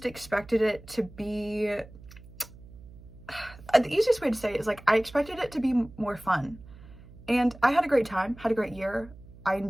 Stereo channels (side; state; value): right; noise; hum, 20 dB below the sound